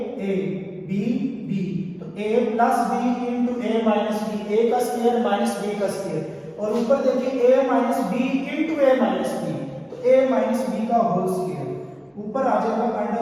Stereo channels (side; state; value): both; identical; correlation 1.00